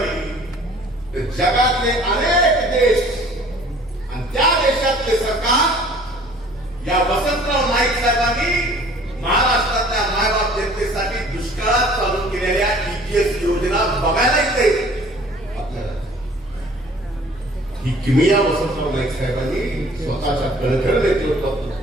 तर जगातले अनेक देश आणि त्या देशातले सरकार या वसंतराव नाईक साहेबांनी महाराष्ट्रातल्या मायबाप जनतेसाठी दुष्काळात चालू केलेल्या EGS योजना बघायला येते। आपल्याला ही किमया वसंतराव नाईक साहेबांनी स्वतःच्या कणखर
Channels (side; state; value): left; noise; hum, 25 dB below the sound